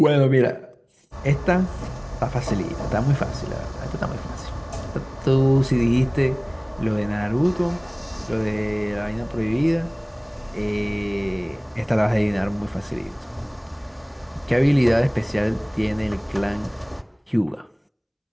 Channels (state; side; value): identical; both; correlation 1.00